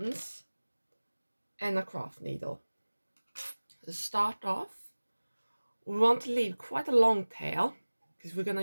and a craft needle. To start off, we want to leave quite a long tail because we're going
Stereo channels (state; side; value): inverted; both; correlation -1.00